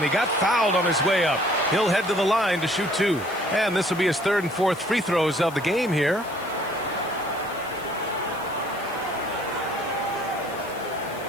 he got fouled on his way up. He'll head to the line to shoot 2. And this will be his 3rd and 4th free throws of the game here.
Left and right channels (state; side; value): noise; left; hiss, 20 dB below the sound